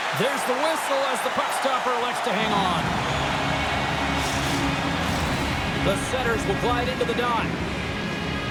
There's the whistle as the puck stopper elects to hang on. The setters will glide into the dot.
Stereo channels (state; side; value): identical; both; correlation 1.00